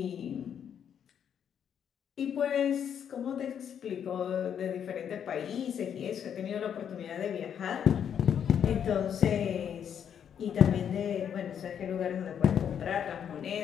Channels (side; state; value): right; quieter; 8.5 dB